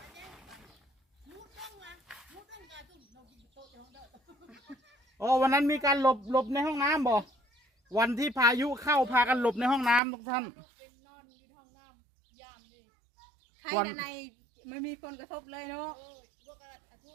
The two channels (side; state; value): left; drops out; at 10.0 s